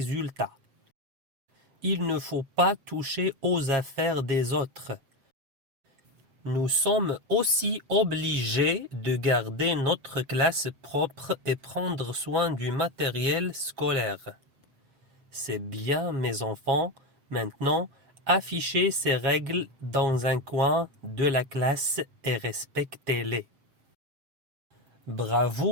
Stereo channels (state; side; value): late; left; 7.4 ms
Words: Il ne faut pas toucher aux affaires des autres. Nous sommes aussi obligés de garder notre classe propre et prendre soin du matériel scolaire. C'est bien, mes enfants. Maintenant, affichez ces règles dans un coin de la classe et respectez-les.